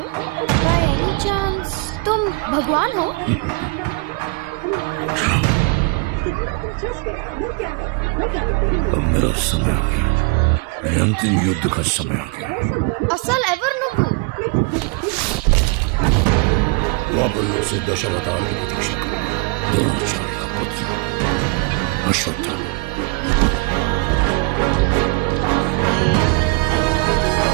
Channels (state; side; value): quieter; left; 27.4 dB